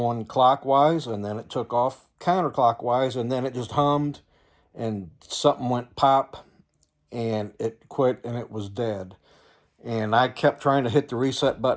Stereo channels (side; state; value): both; identical; correlation 1.00